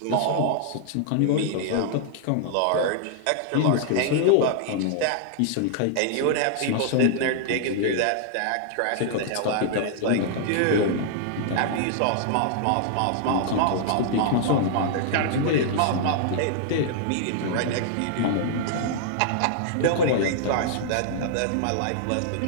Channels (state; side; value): different; both; correlation -0.01